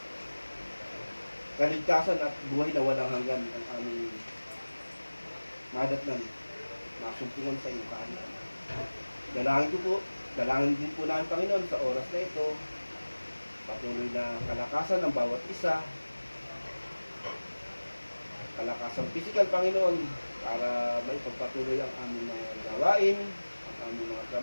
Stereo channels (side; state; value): both; inverted; correlation -1.00